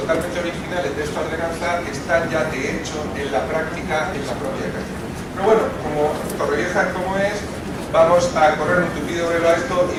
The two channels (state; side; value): identical; both; correlation 1.00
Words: originales de esta ordenanza están ya de hecho en la práctica en la propia calle. Pero bueno, como Torrevieja como es, vamos a correr un tupido velo a esto y